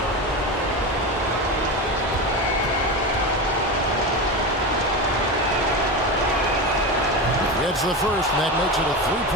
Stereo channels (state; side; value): normal; both; correlation 0.21